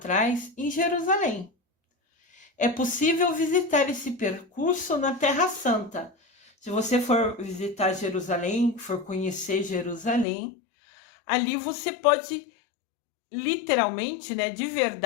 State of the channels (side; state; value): right; drops out; at 10.2 s